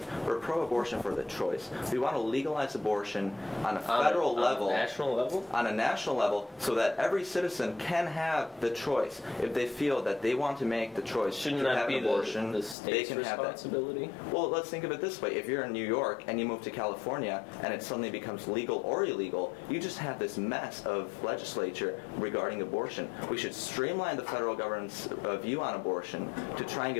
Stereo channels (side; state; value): right; drops out; at 12.8 s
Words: We're pro-abortion for the choice. We want to legalize abortion on a federal level. On a national level? On a national level, so that every citizen can have the choice. If they feel that they want to make the choice to have an abortion, the state's they can responsibility? have that. Well, let's think of it this way. If you're in New York and you move to California and it suddenly becomes legal or illegal, you just have this mess of legislature regarding abortion. We should streamline the federal government's view on abortion to try and